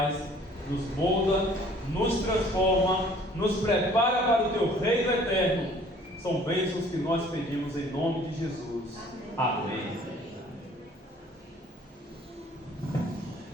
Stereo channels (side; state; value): both; normal; correlation 0.55